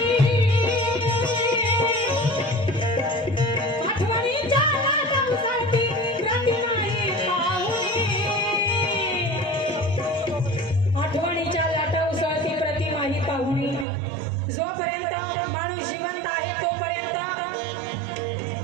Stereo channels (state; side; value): drops out; left; at 13.9 s